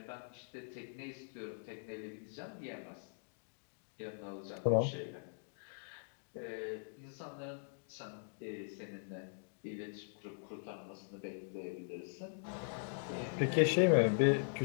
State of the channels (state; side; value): silent; right; digital silence